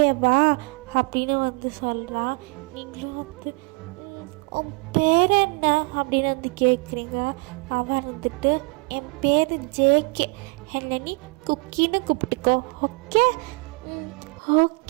அப்படின்னு வந்து சொல்கிறான். நீங்களும் வந்து உன் பேர் என்ன அப்படின்னு வந்து கேட்குறீங்க. அவன் வந்துட்டு என் பேர் ஜேகே, என்னை நீ குக்கின்னு கூப்பிட்டுக்கோ ஓகே.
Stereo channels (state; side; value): quieter; left; 30.7 dB